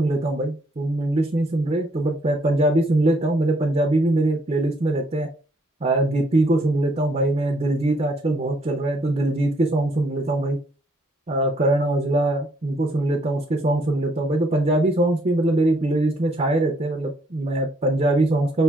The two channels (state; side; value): normal; both; correlation 0.68